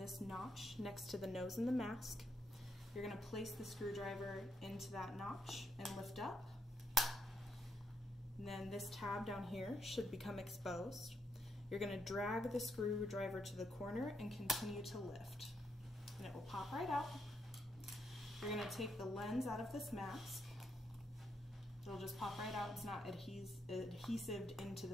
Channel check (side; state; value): both; normal; correlation 0.77